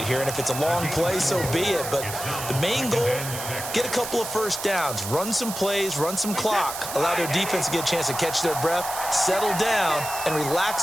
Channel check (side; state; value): right; noise; hiss, 7 dB below the sound